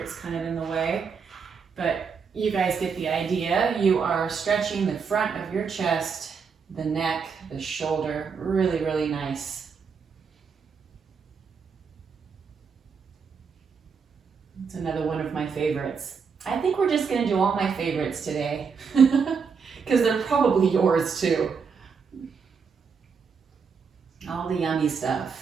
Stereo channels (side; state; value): left; quieter; 5.8 dB